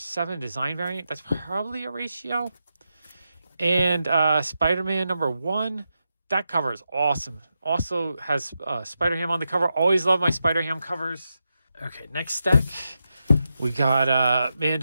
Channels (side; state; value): both; inverted; correlation -0.88